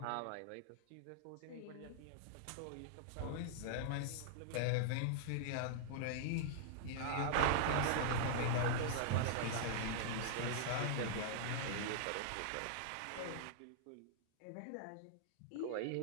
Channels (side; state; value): both; different; correlation -0.01